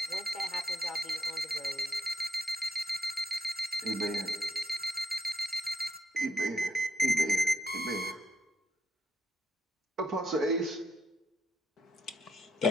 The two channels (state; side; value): normal; both; correlation 0.78